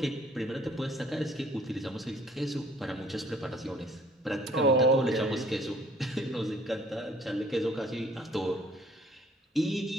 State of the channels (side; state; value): both; normal; correlation 0.57